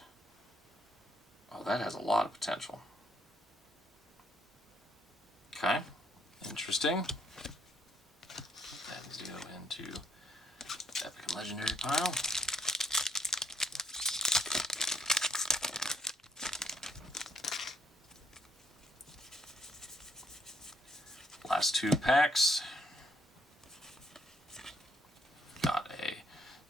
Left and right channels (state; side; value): normal; both; correlation 0.70